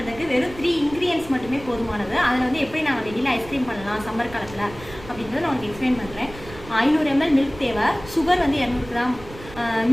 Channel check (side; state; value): right; noise; rumble, 16 dB below the sound